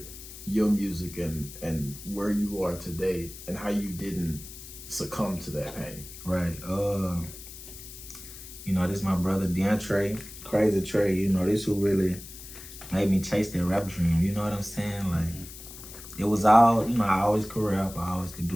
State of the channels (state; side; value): noise; left; hiss, 14 dB below the sound